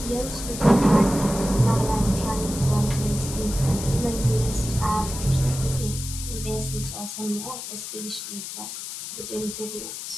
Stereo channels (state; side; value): noise; left; hiss, 8 dB below the sound